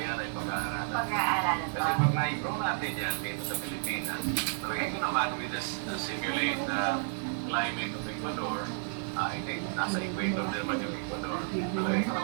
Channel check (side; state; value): left; silent; digital silence